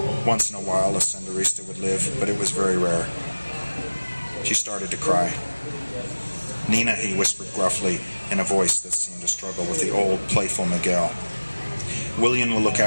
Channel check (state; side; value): inverted; both; correlation -1.00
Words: Once in a while a Senderista would live, but it was very rare. She started to cry. "Nina," he whispered gruffly, in a voice that seemed to struggle with the old, playful Miguel. "William will look